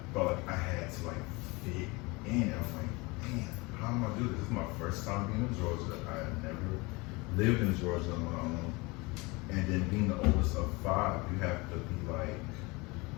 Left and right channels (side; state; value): right; quieter; 25.4 dB